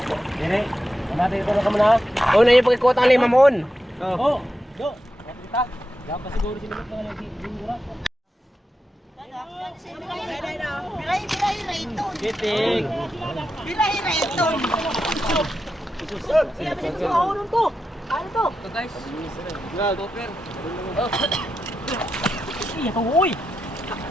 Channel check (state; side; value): normal; both; correlation 0.88